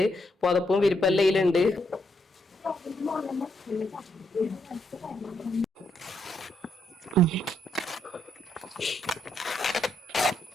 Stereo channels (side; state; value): both; normal; correlation 0.77